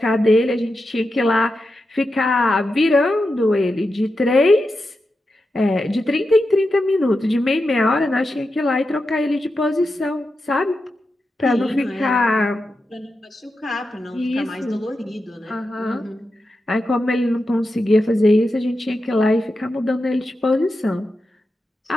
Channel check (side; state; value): both; normal; correlation 0.89